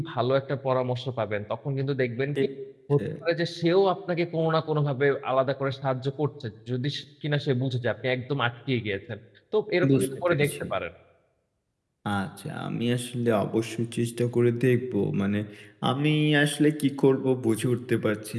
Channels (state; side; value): identical; both; correlation 1.00